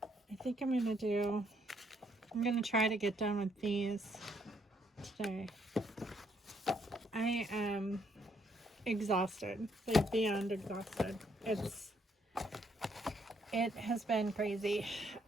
I think I'm gonna try to get done with these today. I am exhausted, like beyond exhausted. It has been crazy.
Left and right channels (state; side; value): normal; both; correlation 0.71